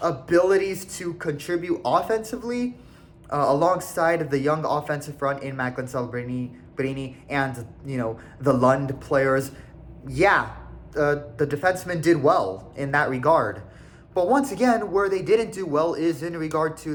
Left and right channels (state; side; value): identical; both; correlation 1.00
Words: abilities to contribute offensively, alongside the young offensive front in Macklin Celebrini and, the Lund players. Yeah, the defensemen did well in that regard. But once again, where they didn't do well is in regard to